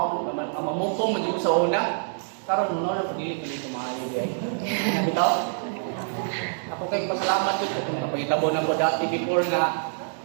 mamukong medyo sa una karon no na pagili ko maayo di bitaw ako kay pasalamat jud kung napahitabo na ko dati before na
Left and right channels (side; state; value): left; silent; digital silence